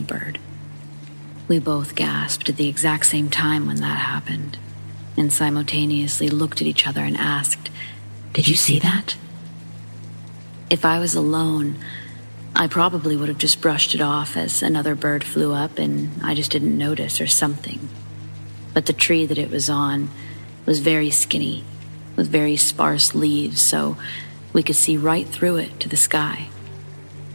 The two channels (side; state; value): both; inverted; correlation -1.00